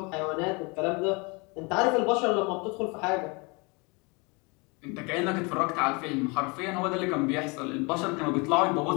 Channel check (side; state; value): right; quieter; 29.4 dB